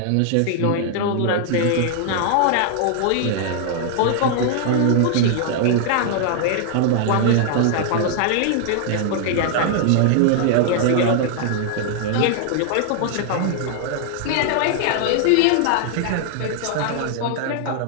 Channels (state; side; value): different; both; correlation 0.00